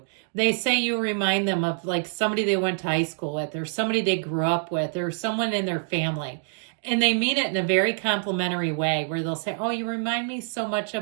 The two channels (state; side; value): silent; left; digital silence